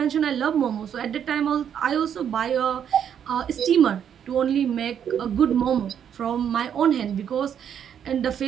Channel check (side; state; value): left; quieter; 8.7 dB